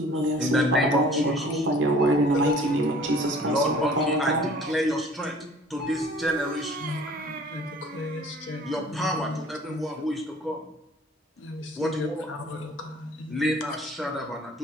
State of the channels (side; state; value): both; normal; correlation 0.50